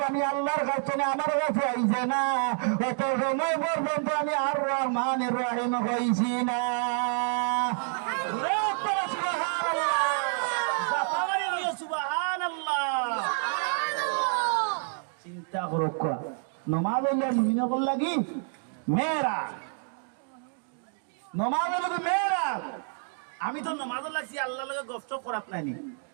আমি আল্লাহর কাছে না আমার কাছে আইছে না অত সময় পর্যন্ত আমি আর রহমানির রহিম হইছি না চিন্তা করো নমাজ মুমিনা বললা কি মেয়েরা নমাজ মেয়েরা আমি তো নামাজ লাগছি আল্লাহ লগে গপসপ করাত নাইনি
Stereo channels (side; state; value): left; silent; 55 dB below the other